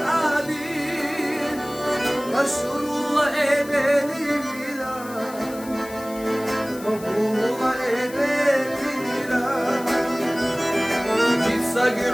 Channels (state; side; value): noise; left; hiss, 17 dB below the sound